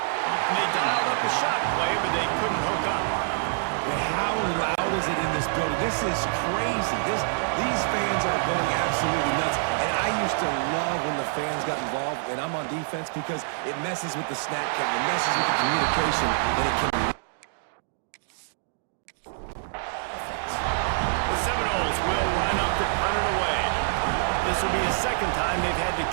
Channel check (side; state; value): left; silent; digital silence